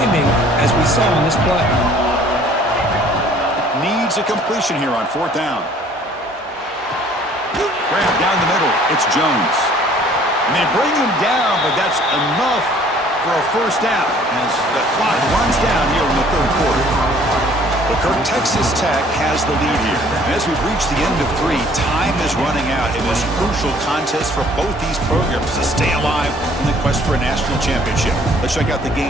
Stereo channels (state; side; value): normal; both; correlation 0.56